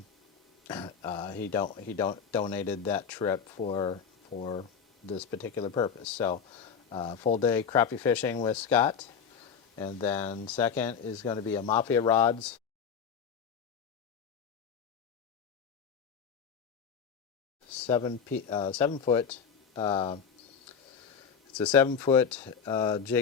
he donated that trip for this particular purpose. So full day crappie fishing with Scott. And then second is going to be a Mafia Rods 7-foot. It's a 7-foot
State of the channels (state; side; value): quieter; right; 6.9 dB